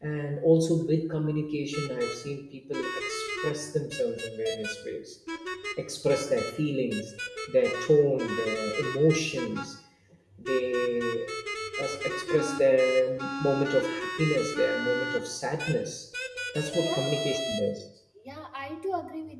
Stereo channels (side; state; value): both; identical; correlation 1.00